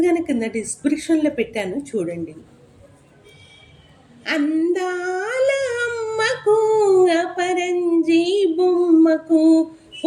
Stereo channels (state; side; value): identical; both; correlation 1.00